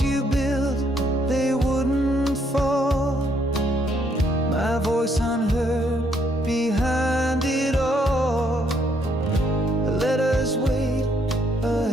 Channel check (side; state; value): both; normal; correlation 0.71